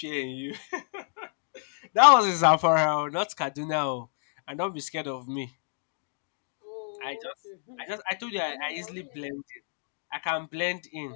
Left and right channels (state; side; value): silent; right; digital silence